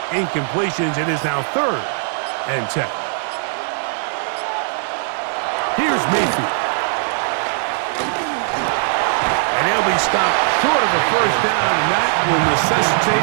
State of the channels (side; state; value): left; silent; digital silence